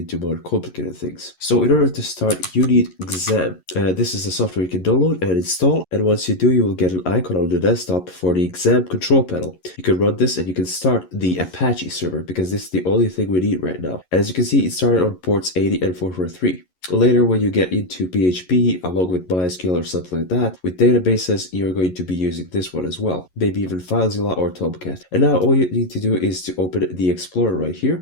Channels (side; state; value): right; late; 11 ms